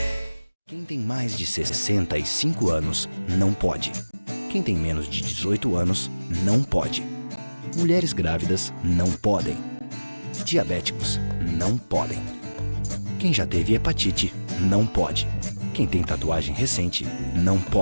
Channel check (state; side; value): inverted; both; correlation -1.00